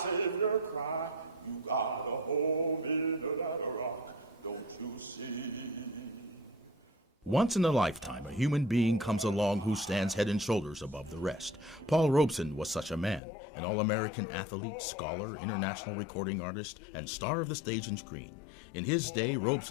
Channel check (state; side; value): drops out; right; at 13.2 s